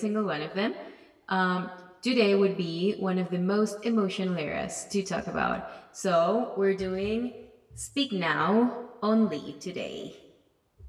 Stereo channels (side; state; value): both; identical; correlation 1.00